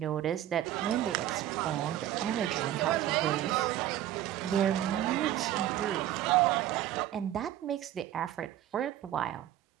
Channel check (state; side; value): quieter; left; 12.5 dB